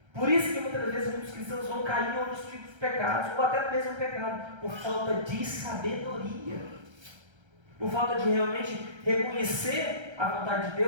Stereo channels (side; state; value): left; late; 1.3 ms